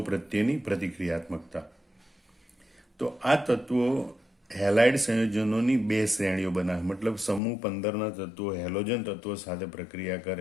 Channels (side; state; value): right; drops out; at 7.4 s